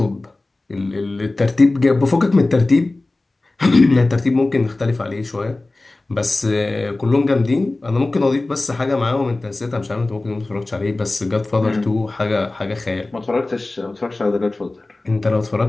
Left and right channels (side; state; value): right; quieter; 3.0 dB